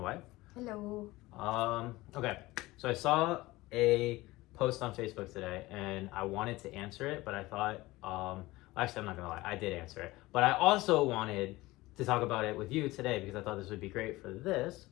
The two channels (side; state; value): right; quieter; 19.5 dB